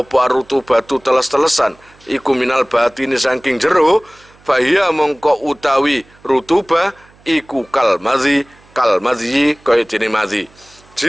rutubatu teles-telesan iku minal batini saking jero fa hiya mongko utawi rutuba iku kal madhi kaya dene madhi.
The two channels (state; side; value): noise; right; hum, 29 dB below the sound